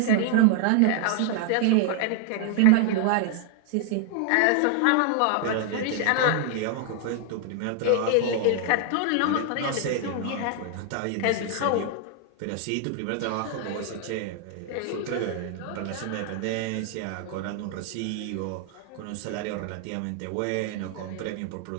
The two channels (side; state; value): both; different; correlation 0.00